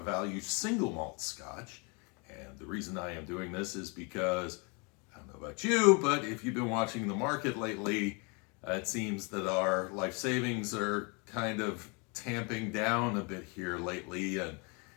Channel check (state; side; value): quieter; right; 32.3 dB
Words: single malt scotch. And the reason I am doing this is because, I don't know about you, but if you've been watching the market lately, it seems that our life savings are kind of tamping down a bit here lately, and